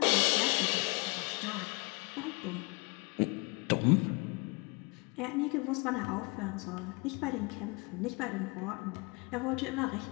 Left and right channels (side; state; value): right; quieter; 29.7 dB